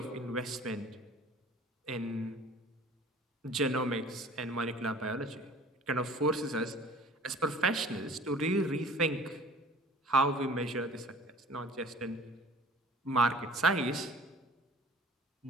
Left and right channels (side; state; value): both; normal; correlation 0.48